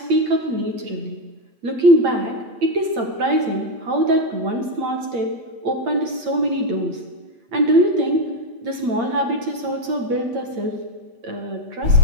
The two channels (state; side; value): late; left; 8.7 ms